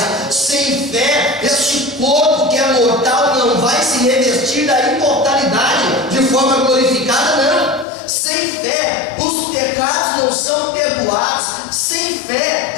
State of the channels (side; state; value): right; drops out; at 7.9 s